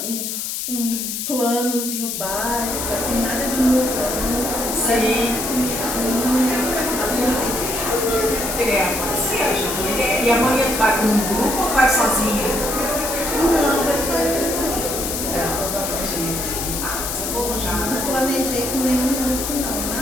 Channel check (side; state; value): left; noise; hiss, 4 dB below the sound